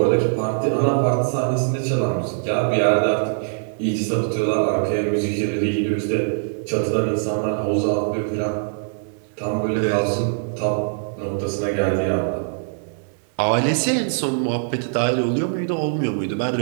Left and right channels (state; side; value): silent; left; 64 dB below the other